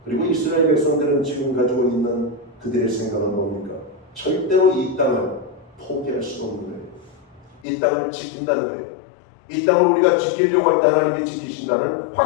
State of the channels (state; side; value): drops out; right; at 7.6 s